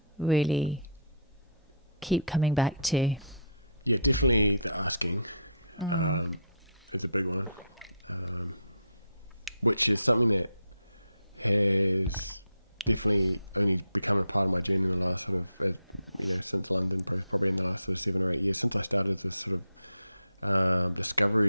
really keep coming back to? Yeah, definitely the asking is a big one, which is something that has definitely only become a part of my journey in the last sort of, since London, probably in the last sort of 7 or 8 years, since I started this sort of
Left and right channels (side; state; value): both; inverted; correlation -0.63